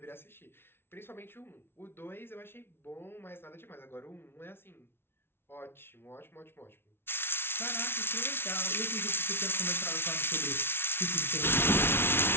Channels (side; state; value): right; late; 0.11 ms